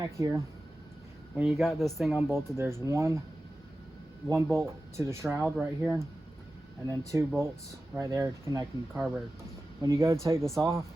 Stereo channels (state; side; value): normal; both; correlation 0.94